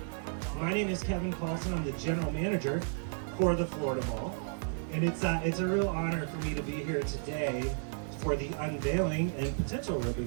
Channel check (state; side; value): silent; left; digital silence